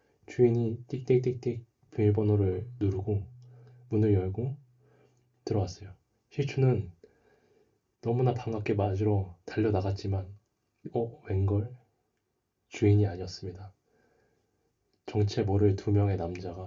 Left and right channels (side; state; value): both; identical; correlation 1.00